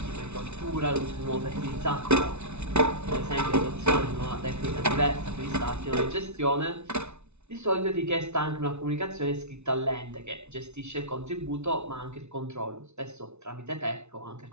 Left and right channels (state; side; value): late; left; 0.81 ms